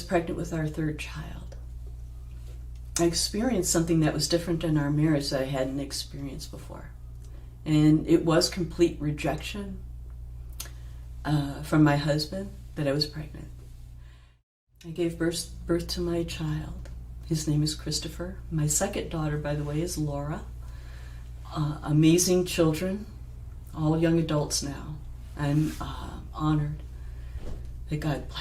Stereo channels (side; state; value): both; identical; correlation 1.00